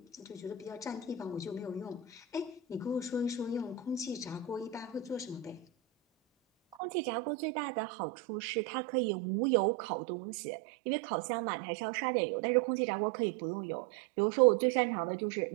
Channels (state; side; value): drops out; left; at 6.8 s